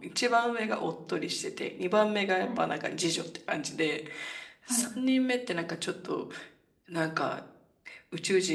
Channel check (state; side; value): identical; both; correlation 1.00